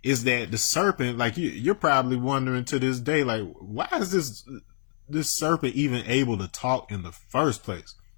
is that the serpent, like you're probably wondering to this day, like, why is this serpent even able to talk in the first place?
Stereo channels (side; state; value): right; silent; 60 dB below the other